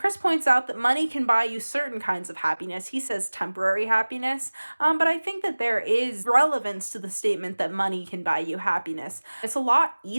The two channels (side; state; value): both; inverted; correlation -1.00